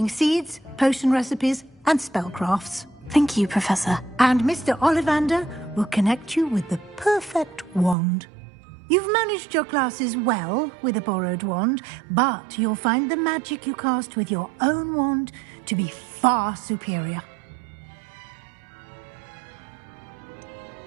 seeds, potion recipes, and spellcrafts. Thank you, Professor. And Mr. Ollivander will connect you with the perfect wand. You've managed your classes well with a borrowed wand, but you'll find the magic you cast with your own wand to be far superior.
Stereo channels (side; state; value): left; drops out; at 8.0 s